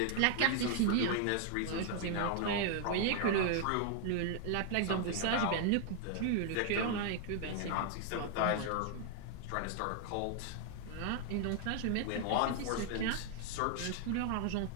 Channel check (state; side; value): different; both; correlation 0.00